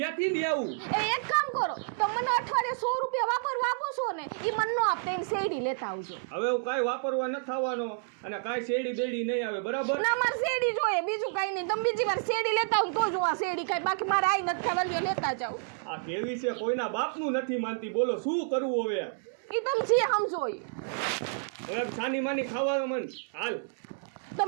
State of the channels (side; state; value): left; silent; digital silence